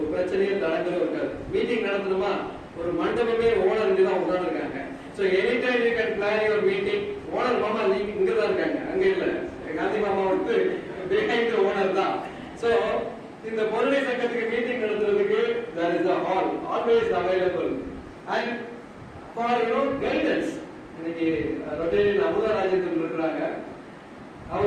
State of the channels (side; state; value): both; identical; correlation 1.00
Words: பிரச்சனையும் தடங்களும் இருக்காது. மீட்டிங் நடத்தணுமா, ஒரு மண்டபமே ஓனர் தான் உட்கார்ந்துருக்காங்க. So anytime you can plan your meeting. Owner மாமா இங்க தான் இருக்காங்க, அங்க இல்ல. காந்தி மாமா behind the owner தான். So இந்த பொருளை சங்கத்துக்கு மீட்டிங் நடத்துறதுக்கு there is a hall always available, and for guidance. இன்னைக்கு ரொட்டேரியன் அமுதா ராஜேந்திரன் இருக்கிறாங்க.